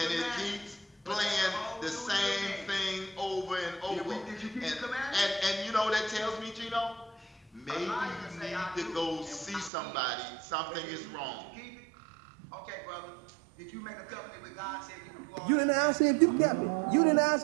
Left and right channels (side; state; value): left; drops out; at 9.7 s